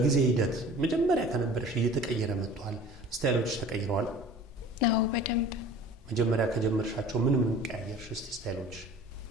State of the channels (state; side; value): normal; both; correlation 0.44